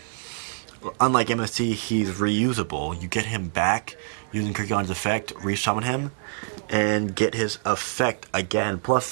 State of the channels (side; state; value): left; silent; 61 dB below the other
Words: MST, he's reusable. You get him back using Kirkion's effect, resummon him, and get his effect again. Plus,